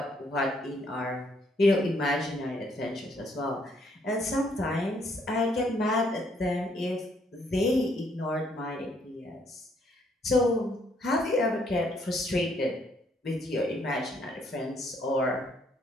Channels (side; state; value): both; normal; correlation 0.69